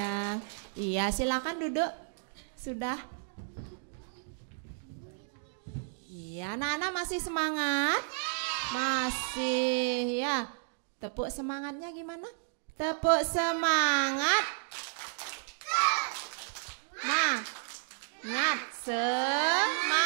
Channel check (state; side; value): silent; left; digital silence